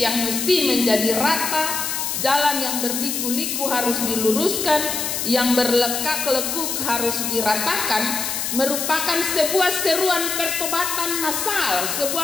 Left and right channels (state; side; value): noise; left; hiss, 2 dB below the sound